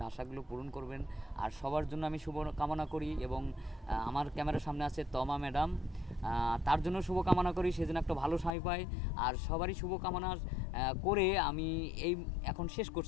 আশাগুলো পূরণ করবেন। আর সবার জন্য আমি শুভ কামনা করি, এবং আমার ক্যামেরার সামনে আছে তমা ম্যাডাম, তার জন্য শুভকামনা করি, সে যেন একটা ভালো স্বামী পায়। আর সবারই শুভকামনা করে আমি এই এখন শেষ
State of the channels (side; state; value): right; drops out; at 8.6 s